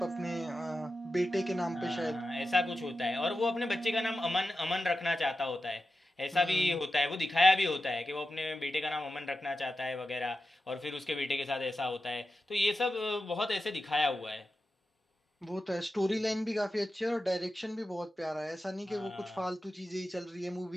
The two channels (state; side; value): normal; both; correlation 0.91